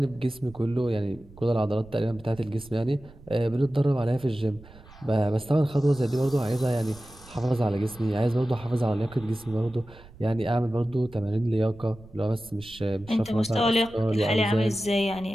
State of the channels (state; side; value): noise; right; rumble, 22 dB below the sound